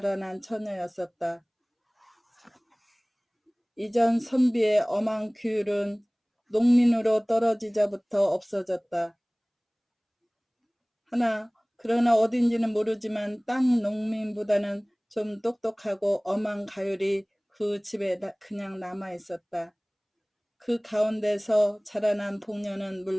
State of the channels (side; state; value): both; identical; correlation 1.00